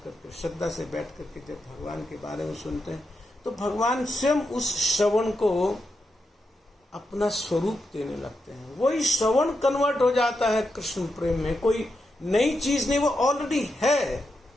करके, श्रद्धा से बैठ करके जब भगवान के बारे में सुनते हैं तो भगवान स्वयं उस श्रवण को अपना स्वरूप देने लगते हैं। वही श्रवण कन्वर्ट हो जाता है कृष्ण प्रेम में, कोई नई चीज नहीं, वो ऑलरेडी है।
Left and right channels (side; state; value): both; normal; correlation 0.86